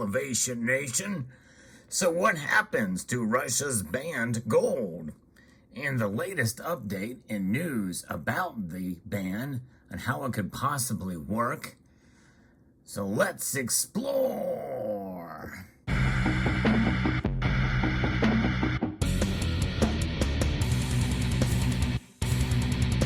Nation. So what happens to Russia's banned gold? And the latest update in news about the ban and how it could possibly work. So let's explore.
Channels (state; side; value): identical; both; correlation 1.00